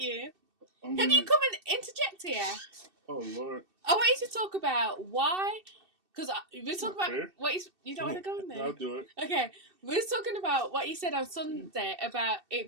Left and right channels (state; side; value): late; left; 2.7 ms